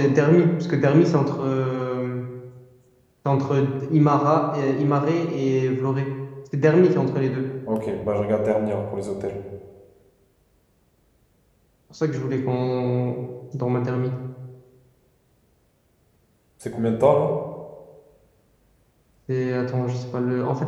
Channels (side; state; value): both; identical; correlation 1.00